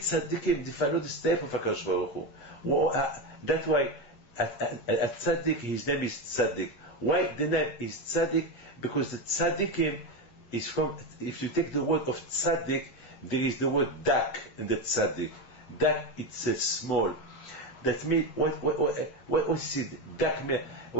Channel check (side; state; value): right; late; 8.2 ms